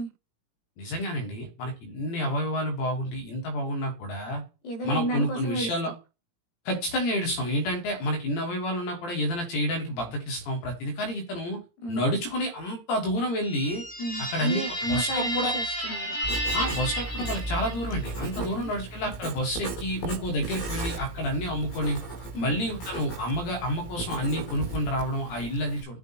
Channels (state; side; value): late; right; 17 ms